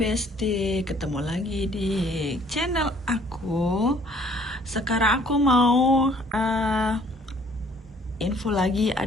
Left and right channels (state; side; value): normal; both; correlation 0.58